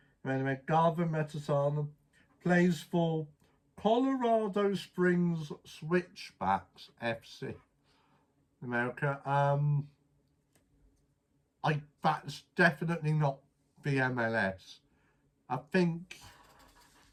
Anyway, Garvin Metasala plays for Colorado Springs Switchbacks FC, America. That's definitely not the MLS. I think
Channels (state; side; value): identical; both; correlation 1.00